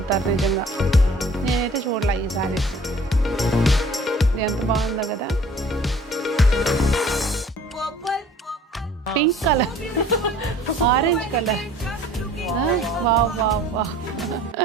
నిజంగా. నేనైతే చూడలే ఈ సారీస్. ఎంత బాగుందో కదా, pink colour, orange colour. Wow wow wow.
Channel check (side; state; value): both; normal; correlation 0.51